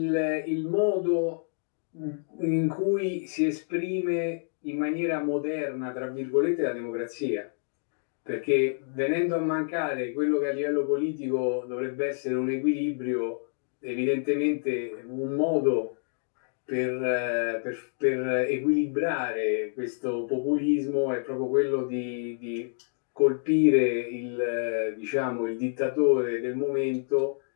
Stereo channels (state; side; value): silent; right; digital silence